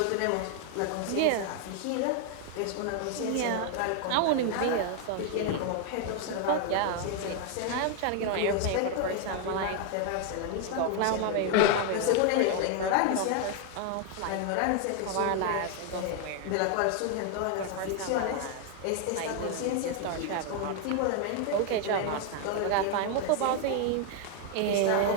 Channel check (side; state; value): both; different; correlation 0.00